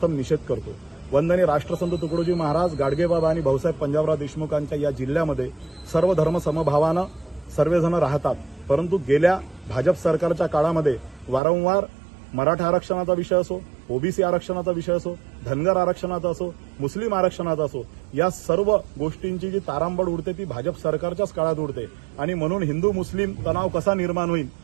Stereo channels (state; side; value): drops out; left; at 11.4 s